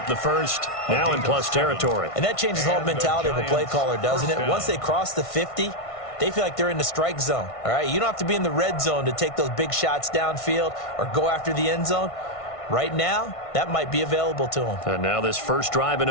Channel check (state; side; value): late; right; 1.5 ms